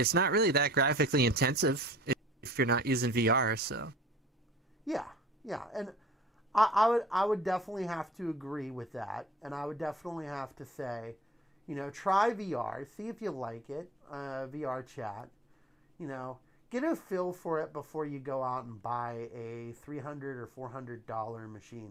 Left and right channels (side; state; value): both; normal; correlation 0.50